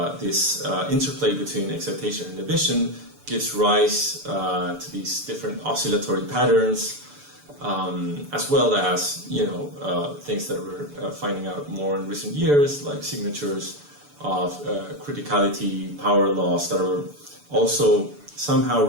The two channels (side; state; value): left; late; 6.9 ms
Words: this interplay between excitation and inhibition gives rise to these different oscillatory patterns, as well as things that we're finding out more in recent years, like signatures of criticality, power laws that are also somehow